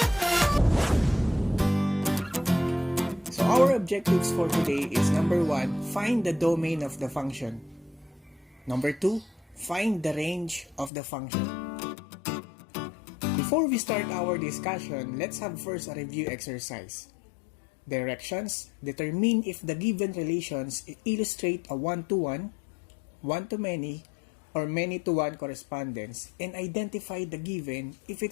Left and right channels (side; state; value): right; drops out; at 10.9 s